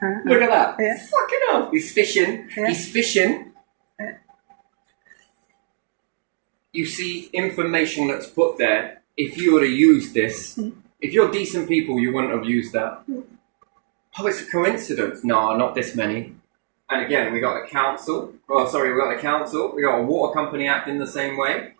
Look at that. Yeah. Fucking hell. He's fishing. Yeah. He's fishing. Yeah. You see information that's put there if you would have used this, if you're decent people, you wouldn't have used that. Oh, it's a coincidence. No, not this many. And again, we got the council. Oh, sorry, we got the council. We got a water company acting the same way.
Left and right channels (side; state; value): left; silent; digital silence